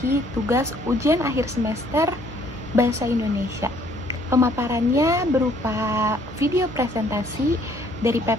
tugas ujian akhir semester Bahasa Indonesia. Pemaparannya berupa video presentasi dari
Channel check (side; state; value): both; normal; correlation 0.62